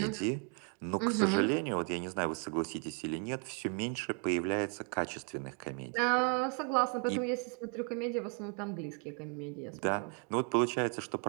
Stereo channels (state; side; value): quieter; left; 36.7 dB